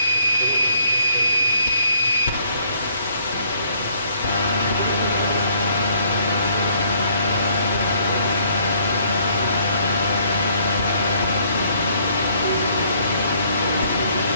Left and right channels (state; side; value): inverted; both; correlation -0.65